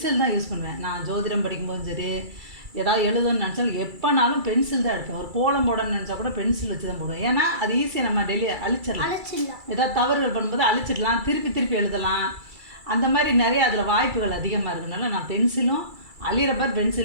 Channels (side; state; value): left; late; 2.3 ms